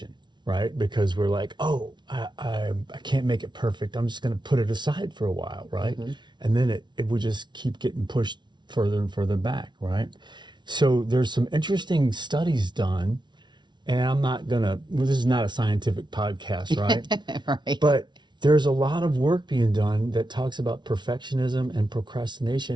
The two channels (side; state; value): left; late; 0.22 ms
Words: right? Because we're like, oh, I can't make it perfect. I'm just going to put it aside for a while, right? Mm-hmm. And then it would just keep getting pushed further and further back, right? So there's some interesting studies done, and this is not a scientific podcast, right? Right. But there's a lot of work being done that talks about perfectionism and